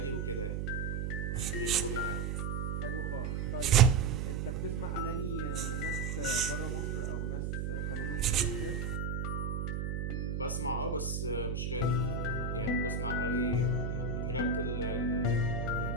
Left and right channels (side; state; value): right; noise; hum, 1 dB below the sound